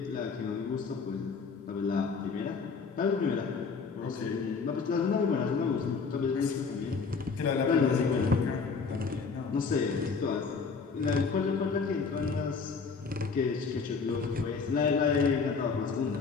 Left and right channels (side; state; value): right; quieter; 5.1 dB